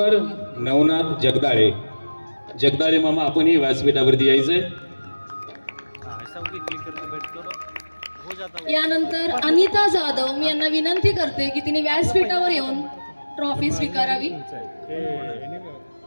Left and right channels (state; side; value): inverted; both; correlation -1.00